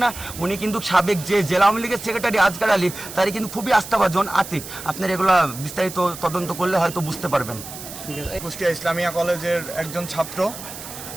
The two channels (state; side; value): noise; right; hiss, 12 dB below the sound